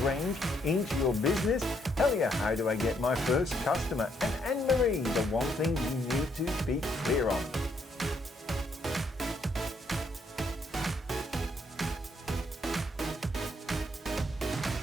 range into your business. Helia, how do I get my first customer? And Annemarie, the one thing you need to be clear on.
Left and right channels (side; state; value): both; normal; correlation 0.72